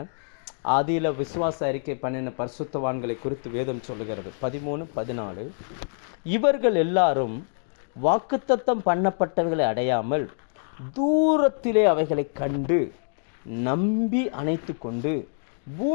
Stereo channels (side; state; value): right; silent; digital silence